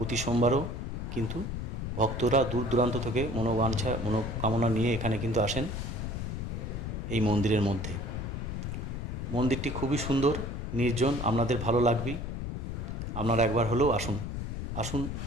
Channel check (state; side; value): noise; left; rumble, 4 dB below the sound